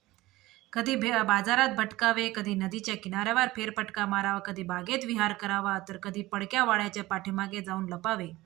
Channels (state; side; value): quieter; left; 18.4 dB